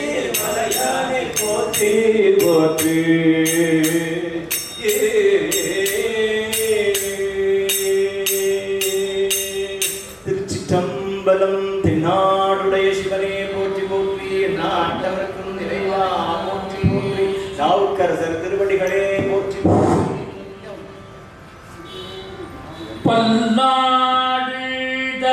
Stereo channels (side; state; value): both; identical; correlation 1.00